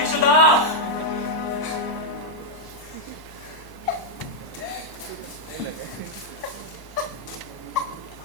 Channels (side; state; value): left; late; 1.0 ms